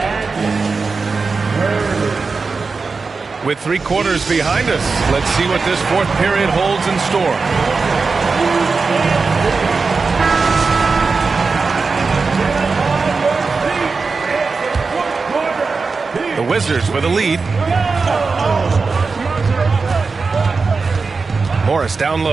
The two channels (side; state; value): left; quieter; 4.5 dB